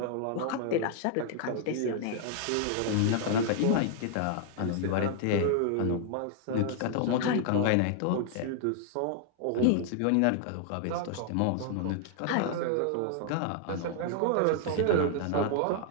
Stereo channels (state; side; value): different; both; correlation 0.00